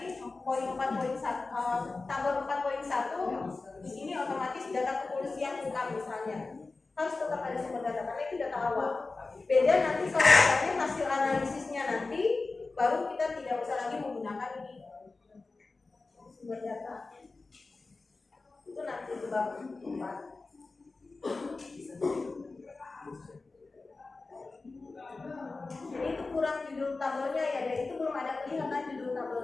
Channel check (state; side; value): quieter; right; 3.7 dB